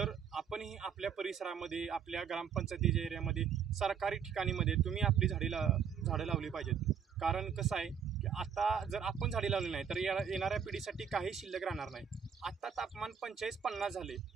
आपणही आपल्या परिसरामध्ये, आपल्या ग्रामपंचायतीच्या एरियामध्ये, सरकारी ठिकाणीमध्ये तुम्ही आपली झाडं लावली पाहिजेत। कारण कसं आहे की आता जर आपण झाडे लावली नाही तर येणाऱ्या पिढीसाठी काही शिल्लक राहणार नाही। आता तापमान 45-50 झाले।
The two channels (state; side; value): quieter; left; 7.4 dB